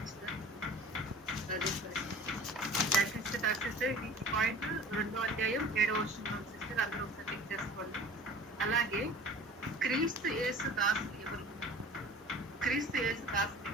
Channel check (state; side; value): normal; both; correlation 0.43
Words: సిస్టర్ ఈ పాయింట్ 2వ అధ్యాయం 7వ వచనం సిస్టర్ అందరూ ఒకసారి చెక్ చేసుకోండి. అలాగే క్రీస్తు యేసు దాసులు ఎవరు? క్రీస్తు యేసు దాసులు